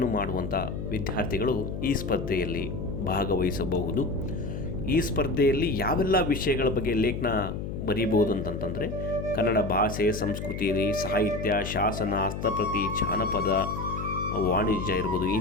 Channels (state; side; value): noise; left; hum, 6 dB below the sound